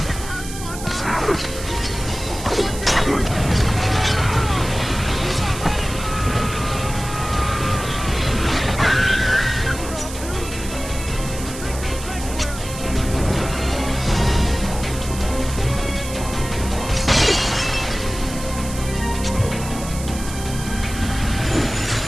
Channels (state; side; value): noise; right; hiss, 11 dB below the sound